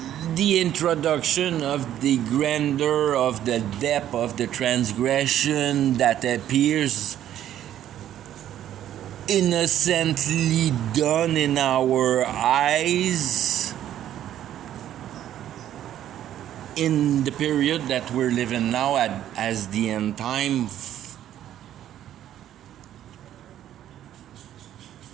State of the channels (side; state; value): left; quieter; 11.5 dB